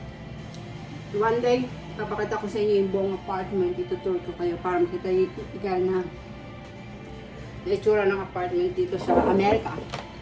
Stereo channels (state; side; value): identical; both; correlation 1.00